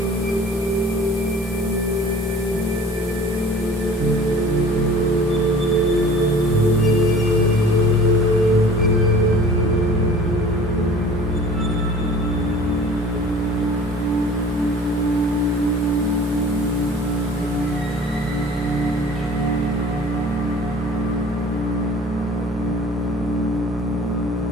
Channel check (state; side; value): normal; both; correlation 0.46